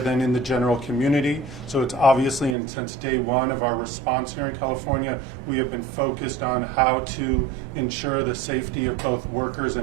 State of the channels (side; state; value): left; drops out; at 2.6 s